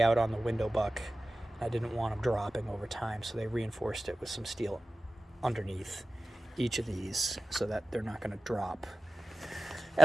out on the window buck. I didn't want them dropping over time, so they reinforced it with some steel underneath each of these so that they're not going to drop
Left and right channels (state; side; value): normal; both; correlation 0.96